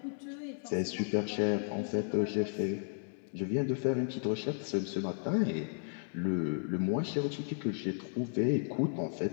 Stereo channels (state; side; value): silent; right; 55 dB below the other